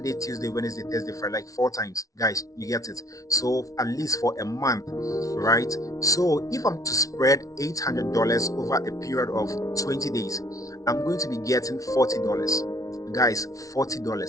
Tuesday, Wednesday, Thursday, Friday, like 4 times. Guys, you get it. So at least for a month, right? So if I'm to spread $800 over a period of 20 days, I'm going to be getting $40. Guys,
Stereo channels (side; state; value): right; late; 0.17 ms